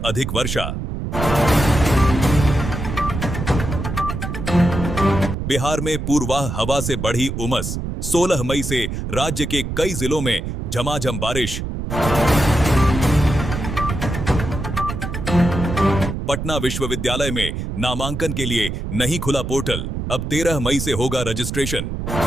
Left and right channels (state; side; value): noise; right; rumble, 4 dB below the sound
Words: अधिक वर्षा। बिहार में पूर्वाह हवा से बढ़ी उमस, 16 मई से राज्य के कई जिलों में झमाझम बारिश। पटना विश्वविद्यालय में नामांकन के लिए नहीं खुला पोर्टल, अब 13 मई से होगा रजिस्ट्रेशन।